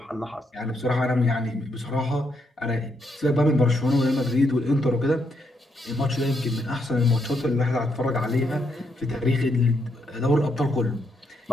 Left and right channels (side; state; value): both; normal; correlation 0.78